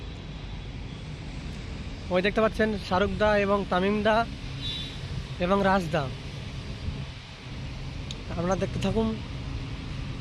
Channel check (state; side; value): identical; both; correlation 1.00